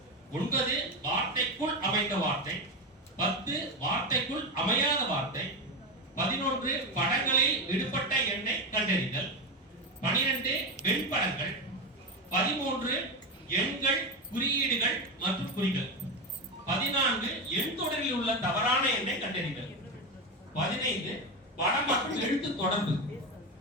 9 வார்த்தைக்குள் அமைந்த வார்த்தை, 10 வார்த்தைக்குள் அமையாத வார்த்தை, 11 படங்களில் விடுபட்ட எண்ணை கண்டறிதல், 12 வெண்படங்கள், 13 எண்கள், குறியீடுகள் மற்றும் குறிகள், 14 எண் தொடரில் உள்ள தவறான எண்ணை கண்டறிதல், 15 படம் மற்றும் எழுத்து தொடர்பு,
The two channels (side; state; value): both; normal; correlation 0.15